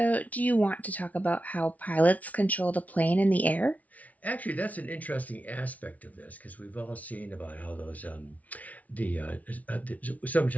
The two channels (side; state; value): right; late; 0.071 ms